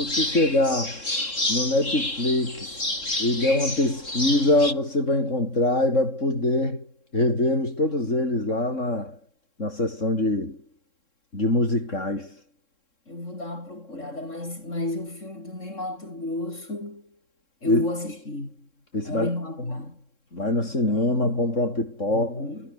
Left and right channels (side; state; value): right; late; 3.7 ms